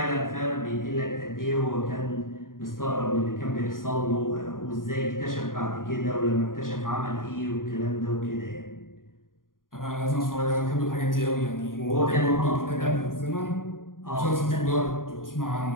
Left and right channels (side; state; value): right; late; 0.90 ms